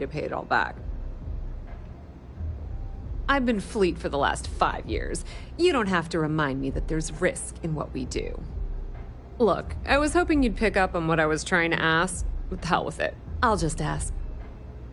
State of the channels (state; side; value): identical; both; correlation 1.00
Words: pay it all back. I've been fleet for the last 5 years. You don't have to remind me that there's risk in what we do. Look, I was hoping you'd pick up on what I was trying to ask. The hell with it. I'll just ask.